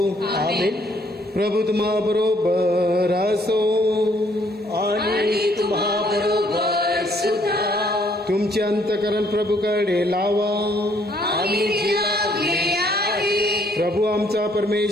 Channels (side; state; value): both; normal; correlation 0.66